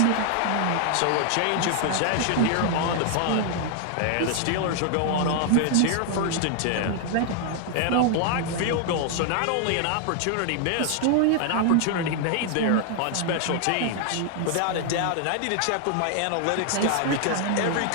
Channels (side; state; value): both; different; correlation 0.00